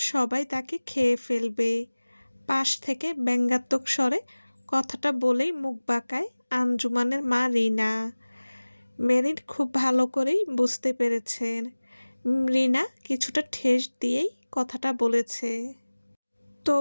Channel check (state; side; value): inverted; both; correlation -1.00